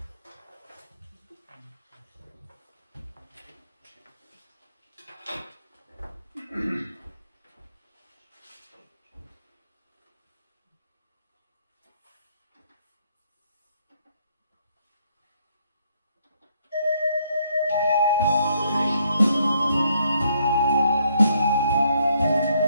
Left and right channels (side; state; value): both; inverted; correlation -0.70